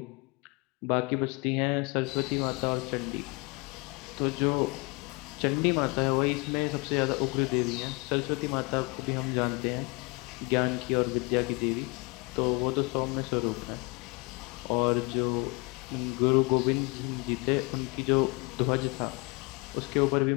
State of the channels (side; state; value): right; quieter; 28.6 dB